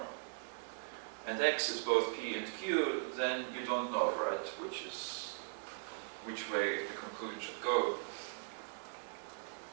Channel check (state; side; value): silent; left; digital silence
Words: and X is both P and Q, then you don't know, right, which way the conclusion should go.